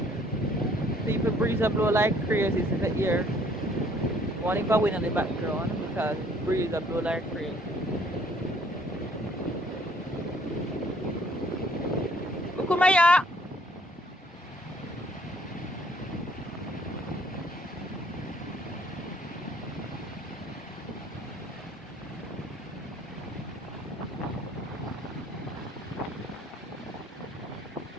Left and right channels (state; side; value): normal; both; correlation 0.61